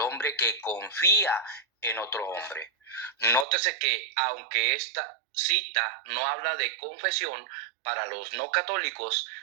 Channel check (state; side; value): drops out; left; at 3.5 s